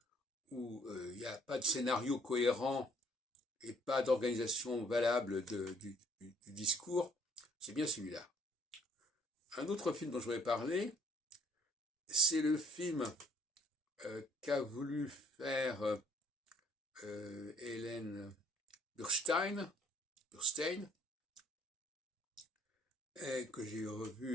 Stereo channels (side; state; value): both; normal; correlation 0.62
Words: où il n'y a pas de scénario cohérent et pas d'organisation valable du discours, c'est bien celui-là. Un autre film dont je voudrais parler, c'est le film qu'a voulu faire Hélène Burstein, que j'ai